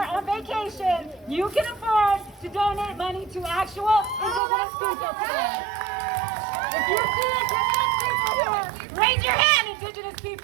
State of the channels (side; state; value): left; drops out; at 4.4 s